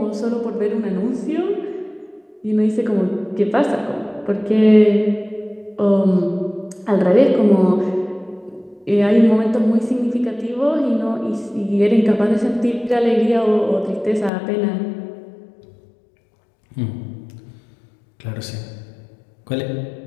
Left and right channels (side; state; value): right; drops out; at 14.3 s